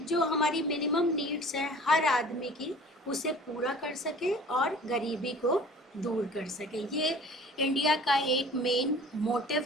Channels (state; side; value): normal; both; correlation 0.46